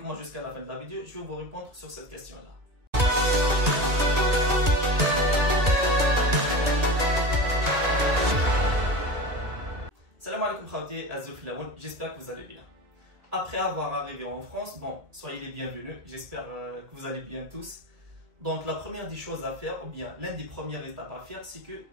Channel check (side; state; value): left; late; 1.9 ms